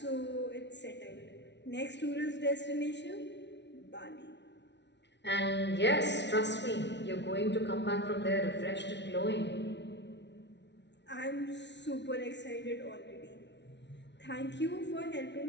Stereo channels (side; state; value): right; late; 0.51 ms